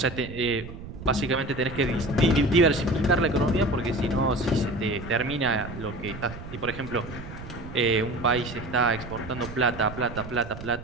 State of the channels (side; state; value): right; noise; rumble, 12 dB below the sound